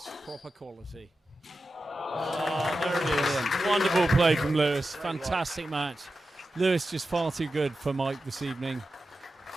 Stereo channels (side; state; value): both; normal; correlation 0.91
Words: Proper quality. Oh, there it is. Wonderful play from Lewis. Fantastic match. Lewis just far too good for Mike this evening.